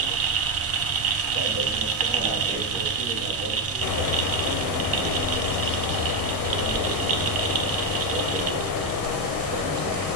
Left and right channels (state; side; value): normal; both; correlation 0.09